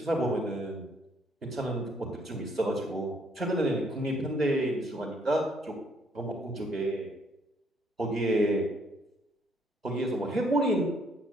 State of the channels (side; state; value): both; normal; correlation 0.67